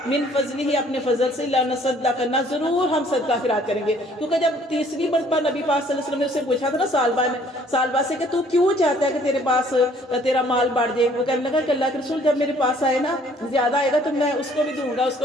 من فضلہ، اپنے فضل سے، لَنَصَدَّقَنَّ، ضرور ہم صدقہ خیرات کریں گے. کیونکہ جب تیسری مرتبہ نبی پاک صلی اللہ علیہ وسلم نے اسے پوچھا تھا نا سالبہ سے کہ تو کیوں چاہتا ہے کہ تیرے پاس تیرا مال بڑھ جائے، وہ کہنے لگا کہ اللہ کے رسول جب میرے پاس آئے نا زیادہ آئے گا تو میں اس کو بھی دوں گا، اس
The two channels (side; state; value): both; normal; correlation 0.59